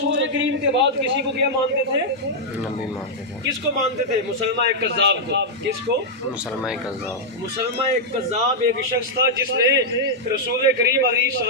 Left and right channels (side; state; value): both; normal; correlation -0.05